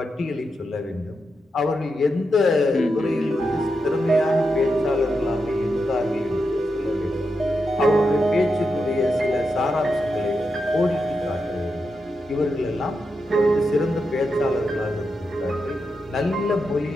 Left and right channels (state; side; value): normal; both; correlation 0.86